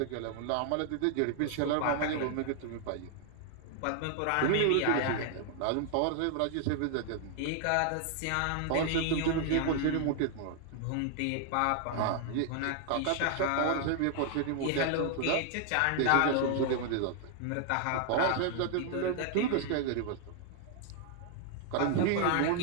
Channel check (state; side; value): different; both; correlation 0.00